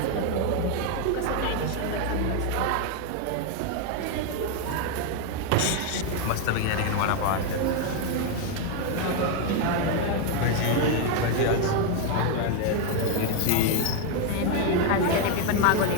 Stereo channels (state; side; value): different; both; correlation 0.01